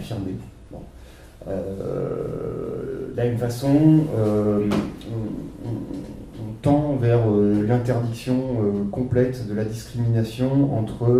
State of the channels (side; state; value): both; identical; correlation 1.00